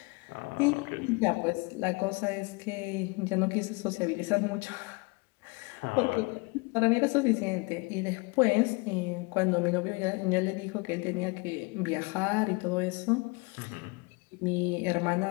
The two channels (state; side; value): quieter; right; 28.2 dB